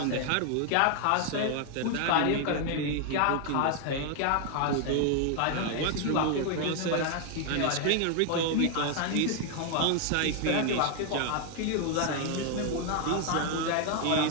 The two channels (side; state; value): both; different; correlation 0.00